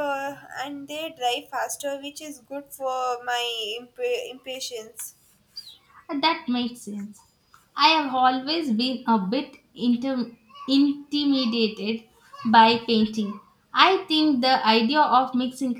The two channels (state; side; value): identical; both; correlation 1.00